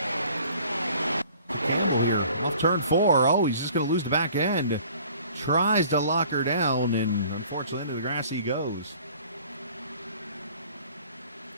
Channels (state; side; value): inverted; both; correlation -0.52